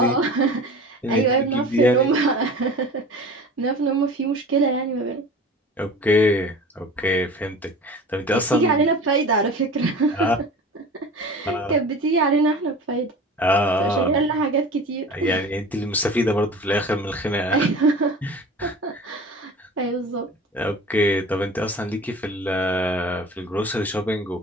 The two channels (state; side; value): normal; both; correlation 0.38